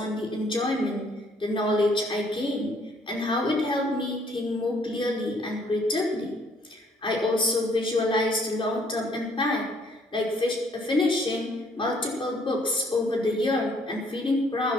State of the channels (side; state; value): both; normal; correlation 0.64